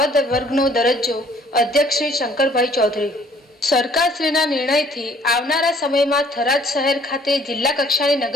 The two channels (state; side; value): normal; both; correlation 0.59